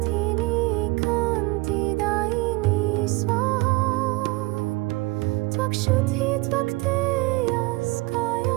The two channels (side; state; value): left; quieter; 22.6 dB